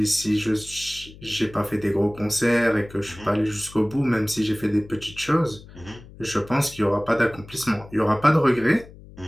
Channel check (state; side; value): noise; left; hum, 19 dB below the sound